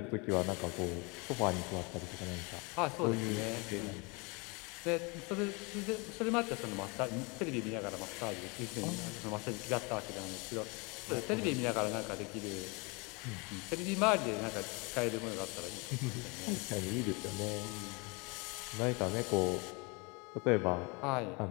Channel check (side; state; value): right; quieter; 29.3 dB